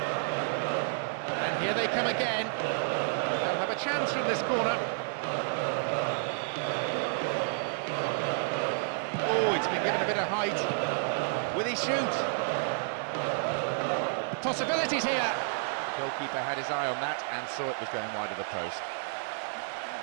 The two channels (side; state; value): left; silent; 57 dB below the other